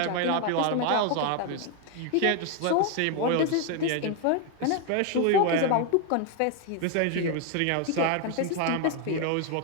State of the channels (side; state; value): both; different; correlation 0.01